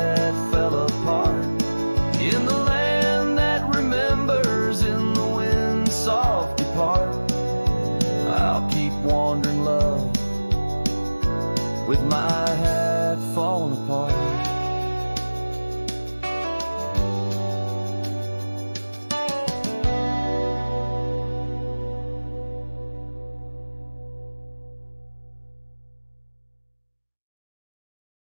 fell apart. In the land that remembers, in the wind's soft depart, I'll keep wandering, love, with my hat falling apart.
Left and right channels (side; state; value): both; inverted; correlation -1.00